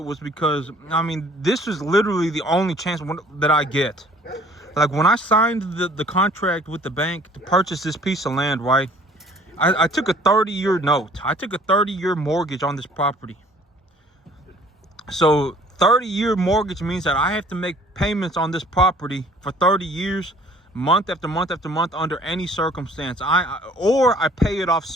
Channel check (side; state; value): both; normal; correlation 0.55